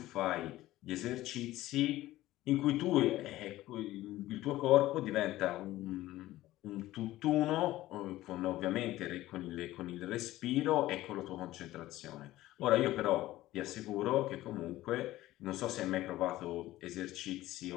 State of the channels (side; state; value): right; quieter; 16.0 dB